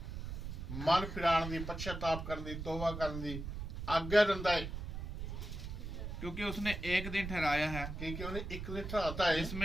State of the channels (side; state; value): right; noise; rumble, 6 dB below the sound